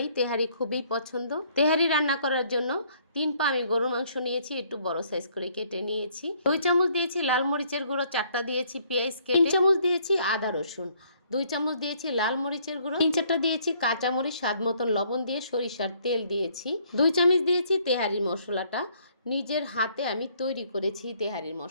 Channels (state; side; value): inverted; both; correlation -0.64